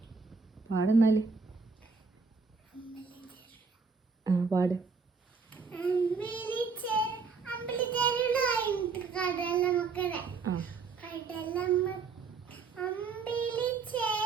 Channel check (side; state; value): left; quieter; 4.9 dB